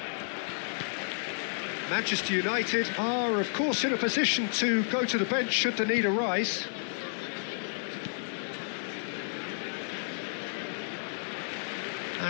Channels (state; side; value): silent; right; 57 dB below the other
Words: Manchester United are, of course, in a position to go to the bench should the need arise.